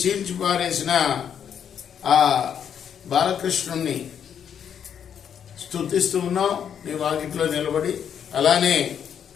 చీల్చి పారేసిన ఆ బాలకృష్ణుణ్ణి స్తుతిస్తూ ఉన్నాం నీ వాకిట్లో నిలబడి. అలానే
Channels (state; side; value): quieter; right; 8.3 dB